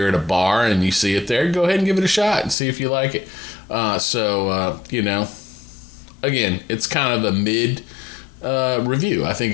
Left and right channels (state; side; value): drops out; right; at 2.6 s